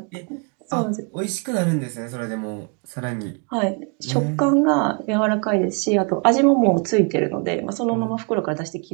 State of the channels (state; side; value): quieter; left; 35.4 dB